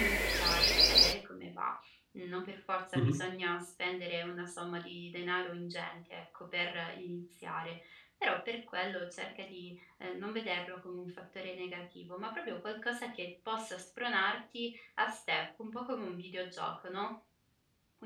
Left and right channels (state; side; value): identical; both; correlation 1.00